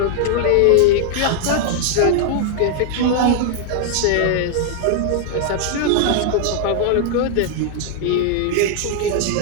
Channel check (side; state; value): both; different; correlation 0.00